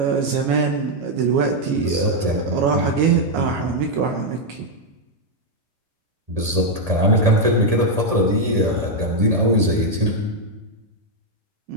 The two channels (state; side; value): late; left; 1.7 ms